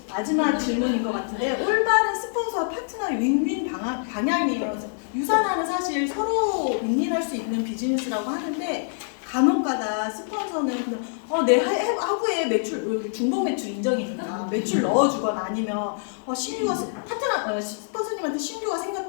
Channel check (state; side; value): silent; right; digital silence